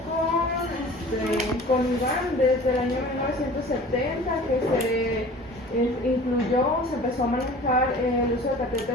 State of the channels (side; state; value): both; normal; correlation 0.43